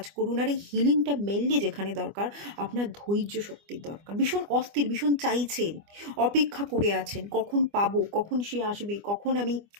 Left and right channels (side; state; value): left; late; 25 ms